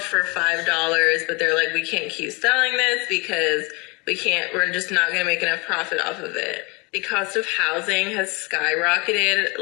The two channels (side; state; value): right; quieter; 28.2 dB